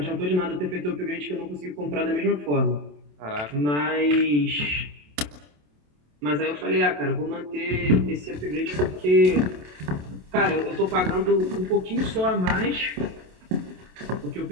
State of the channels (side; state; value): left; late; 27 ms